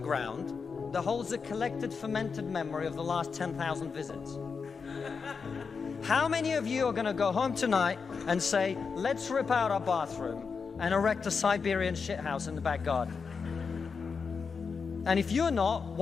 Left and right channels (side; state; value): right; quieter; 5.4 dB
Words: that holds a collected fermented memory of the last 10,000 visits. How many of you are going to go home tonight and say, let's rip out our bathroom and erect a Siberian shithouse in the back garden? And if you're not,